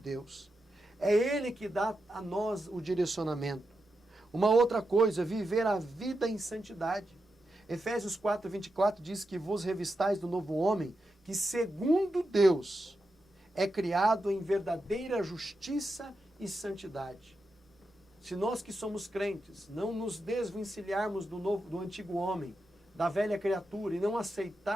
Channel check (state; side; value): normal; both; correlation 0.87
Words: É Ele que dá a nós o direcionamento. Uma outra coisa, viver a vida em santidade. Efésios 4:24 diz que vos revistais do novo homem, que segundo Deus é criado em verdadeira justiça e santidade. Se nós que somos crentes não nos desvencilharmos do antigo homem, da velha criatura, e não